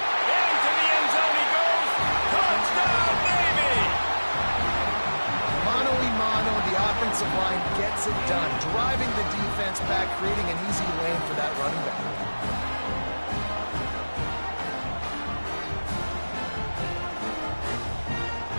Into the end zone he goes. Touchdown, Navy! Mano-a-mano, the offensive line gets it done. Driving the defense back, creating an easy lane for that running back.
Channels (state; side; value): inverted; both; correlation -1.00